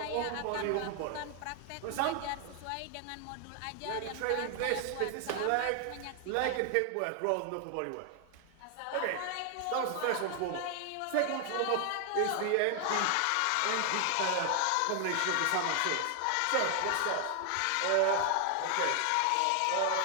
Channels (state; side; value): different; both; correlation 0.00